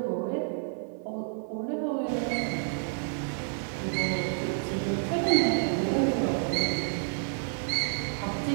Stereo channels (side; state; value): left; silent; 58 dB below the other